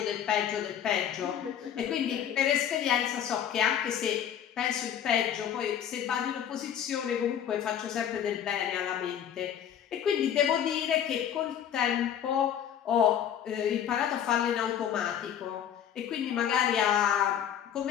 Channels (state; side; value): quieter; right; 9.5 dB